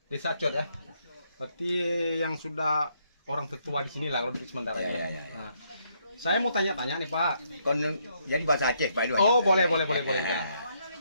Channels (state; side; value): inverted; both; correlation -0.73